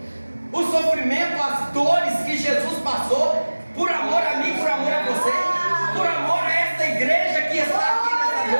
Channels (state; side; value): inverted; both; correlation -1.00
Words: o sofrimento, as dores que Jesus passou por amor a mim, por amor a você, por amor a esta igreja que está aqui nessa